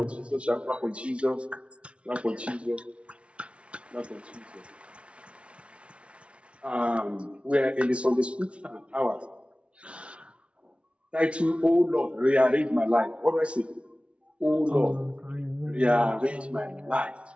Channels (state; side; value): late; left; 0.060 ms